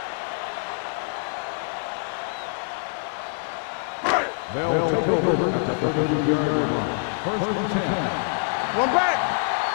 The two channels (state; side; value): silent; right; digital silence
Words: They'll take over at the 33-yard line. 1st and 10. One back.